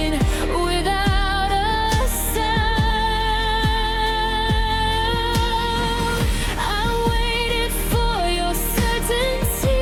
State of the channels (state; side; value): identical; both; correlation 1.00